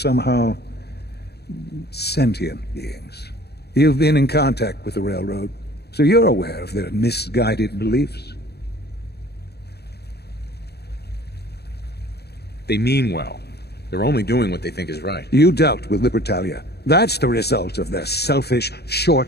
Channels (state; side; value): late; right; 0.47 ms